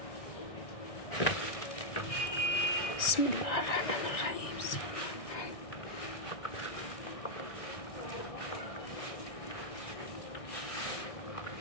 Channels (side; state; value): right; late; 1.6 ms